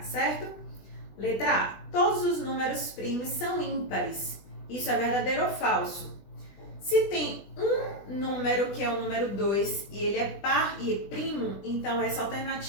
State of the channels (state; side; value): late; right; 20 ms